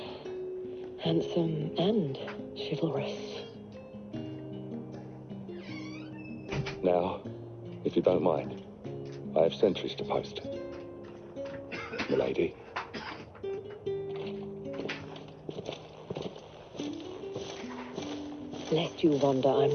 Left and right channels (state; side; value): identical; both; correlation 1.00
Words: Handsome and chivalrous. Now, if you don't mind, I have sentries to post. Milady. Lest you wonder, I'm